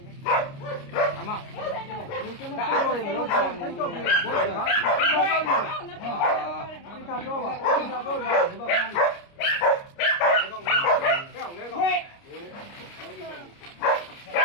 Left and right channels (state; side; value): late; right; 29 ms